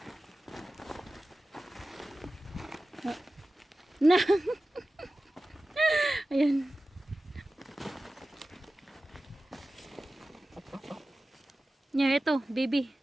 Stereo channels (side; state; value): both; normal; correlation 0.95